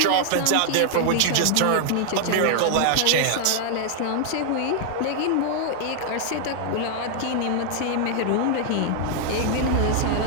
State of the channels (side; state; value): both; different; correlation 0.00